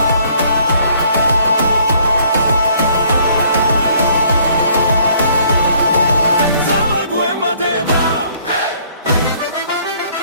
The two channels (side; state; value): both; inverted; correlation -0.61